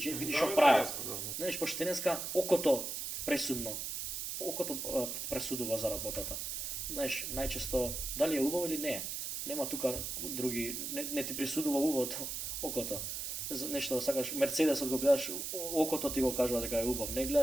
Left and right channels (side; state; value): right; noise; hiss, 4 dB below the sound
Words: види што прави. Знаеш, пошто денеска окото пресудно. Окото пресудува за работата. Знаеш, најчесто дали е убаво или не е. Нема тука други, не ти присудува убавото, окото. Нешто да сакаш, Мерцедесот го гледаш, окото ти го кажува дека е убав. Не